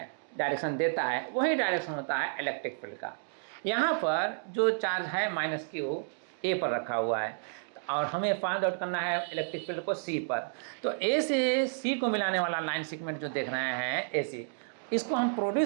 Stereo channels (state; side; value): silent; left; digital silence